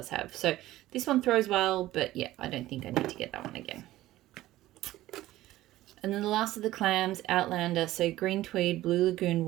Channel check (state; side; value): quieter; left; 15.7 dB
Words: have. So this one throws well, but yeah, I don't think I need to get that one again. And then the last of the clams, Outlander. So green tweed, blue lagoon